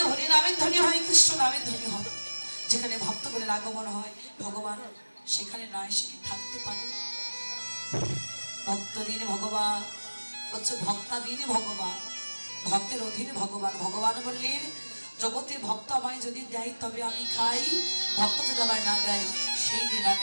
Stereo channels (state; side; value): inverted; both; correlation -1.00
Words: হরিনামের ধ্বনি হয়, কৃষ্ণ নামের ধ্বনি হয়, যেখানে ভক্তগণের আগমন হয়, ভগবান সেখানে না এসে কি থাকতে পারে? ভক্তদিন ভগবান হচ্ছে, ভক্তাদিন ভগবান, ভক্তের অধীনে ভগবান। ভগবান বললেন জগতে ভক্ত আমায় যদি দেয় তবে আমি খাই, ভক্ত যদি আমায় না দেয় সেই দিন